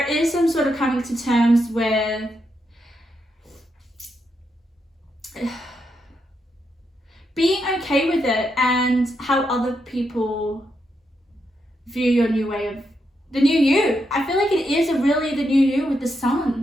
is some sort of coming to terms with being okay with it and how other people view your new way of the new you. I feel like it is really the new you with the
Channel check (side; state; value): both; normal; correlation 0.82